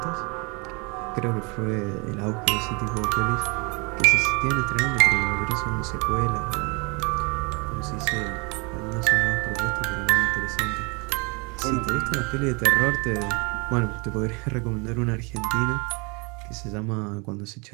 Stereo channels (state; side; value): quieter; left; 30.6 dB